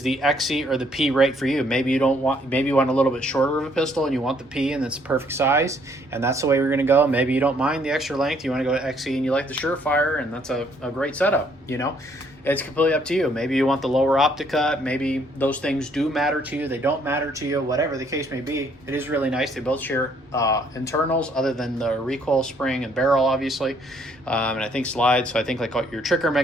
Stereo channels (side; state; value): both; normal; correlation 0.66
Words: the XC or the P right for you? Maybe you want a little bit shorter of a pistol and you want the P and it's the perfect size, and that's the way we're going to go. Maybe you don't mind the extra length, you want to go to XC and you like the Surefire, and that's a great setup. You know, it's completely up to you. Maybe you want the lower optic cut. Maybe those things do matter to you, they don't matter to you, whatever the case may be. It is really nice. They both share internals other than the recoil spring and barrel, obviously, and I think slides. So I think like your trigger